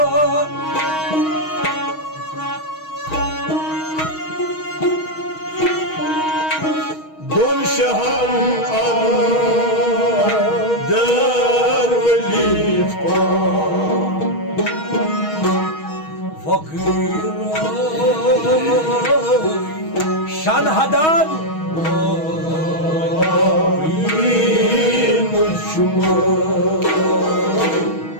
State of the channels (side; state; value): right; late; 6.3 ms